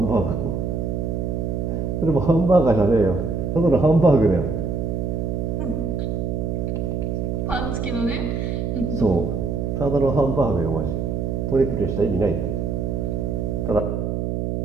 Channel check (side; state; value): right; noise; hum, 1 dB below the sound